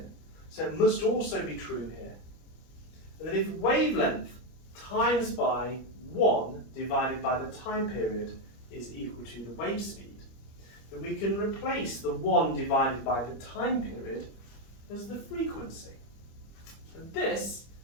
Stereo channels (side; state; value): right; late; 25 ms